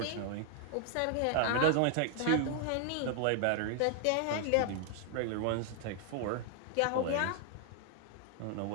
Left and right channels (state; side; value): different; both; correlation 0.00